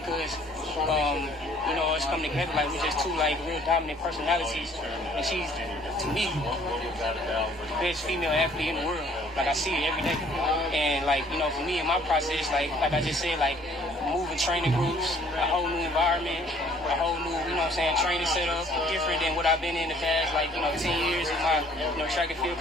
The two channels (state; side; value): normal; both; correlation 0.58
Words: you know, it's coming together like we're just two like real dominant personalities. And she's, to me, the best female athlete in the world. Like I see it every day. And like, you know, for me in my process, like I just said, like moving training groups, a whole new environment, a whole new, you know what I'm saying, training setup, different than what I've been in the past, like, you know, 10 years of my, you know, track and field